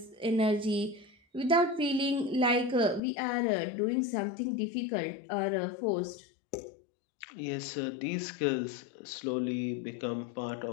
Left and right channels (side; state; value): right; drops out; at 3.0 s